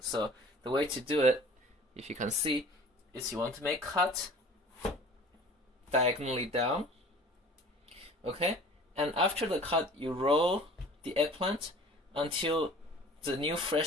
So the way to do it, if you can see, is you want to make cut diagonally down. Okay? And after the cut, you roll the eggplant until the new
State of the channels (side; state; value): both; normal; correlation 0.45